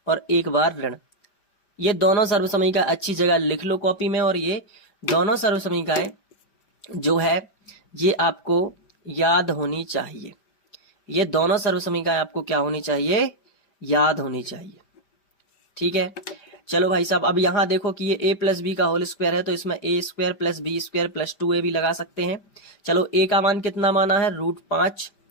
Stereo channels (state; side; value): late; right; 5.0 ms